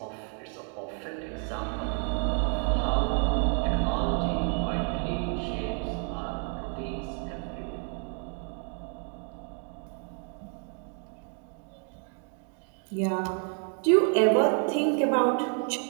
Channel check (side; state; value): left; quieter; 39.9 dB